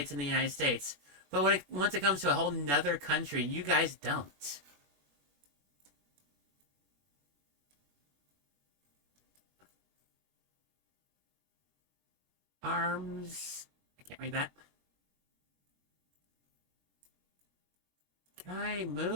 in the United States, but once it comes to a whole nother country, you guys don't. Arms. I can't read that. Can I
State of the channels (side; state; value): left; late; 21 ms